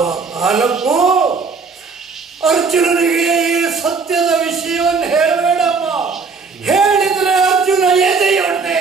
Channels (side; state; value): left; quieter; 4.8 dB